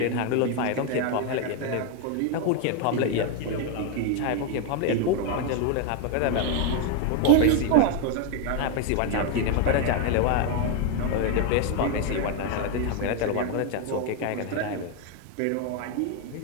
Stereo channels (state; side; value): different; both; correlation 0.01